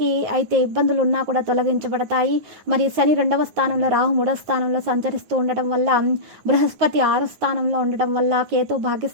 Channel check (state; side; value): late; left; 9.5 ms